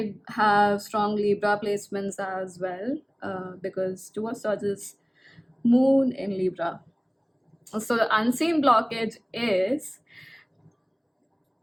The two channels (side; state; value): both; identical; correlation 1.00